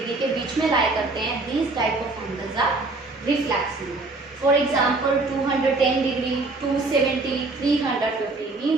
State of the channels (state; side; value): quieter; left; 3.3 dB